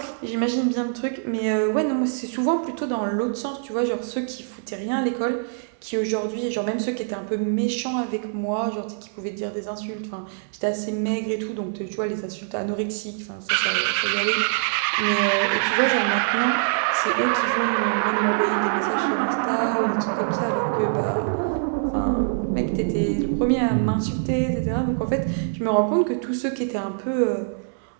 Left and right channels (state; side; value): silent; left; 62 dB below the other